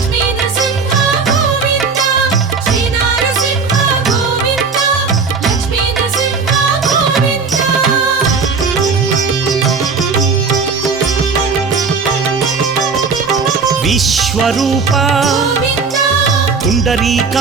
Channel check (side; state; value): left; quieter; 5.0 dB